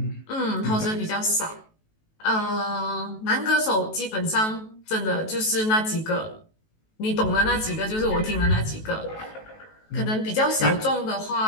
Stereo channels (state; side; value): late; right; 18 ms